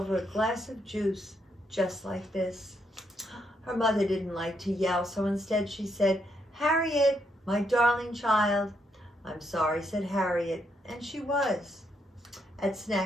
a glass of juice just like this. Her mother didn't like to yell, so instead she said, "Harriet, my darling child." "I'm sorry," said Harriet, and she was. At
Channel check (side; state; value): both; normal; correlation 0.77